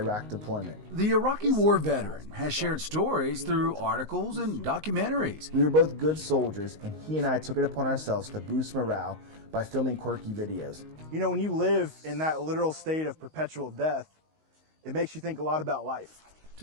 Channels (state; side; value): late; left; 19 ms